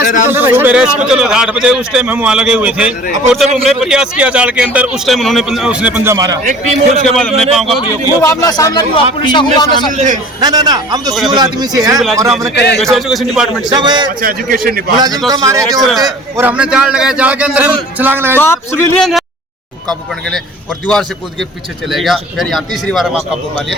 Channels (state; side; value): normal; both; correlation 0.45